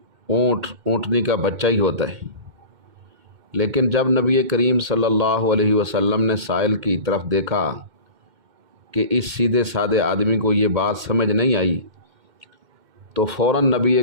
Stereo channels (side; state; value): left; late; 2.1 ms